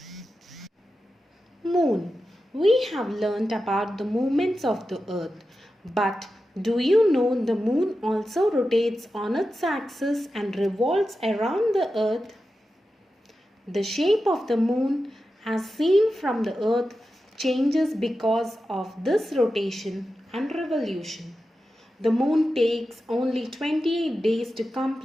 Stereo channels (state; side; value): normal; both; correlation 0.91